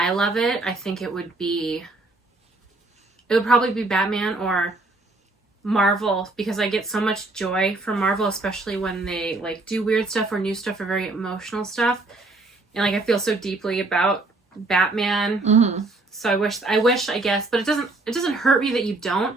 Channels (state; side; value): quieter; left; 3.2 dB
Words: love it, I think it would probably be Batman or Marvel, because I get so much joy from Marvel, especially when they, like, do weird stuff or new stuff or very emotional stuff. And, like, I feel so deeply about Batman. Mm-hmm. So I wish, I guess, but it doesn't hurt me that you don't.